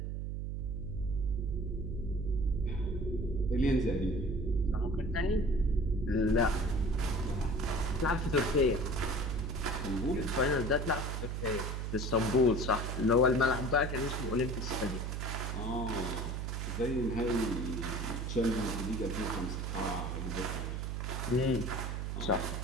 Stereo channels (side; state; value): right; noise; hum, 3 dB below the sound